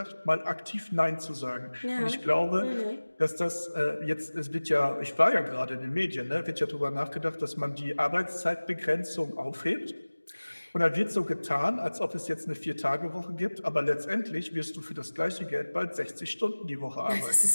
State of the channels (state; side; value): inverted; both; correlation -1.00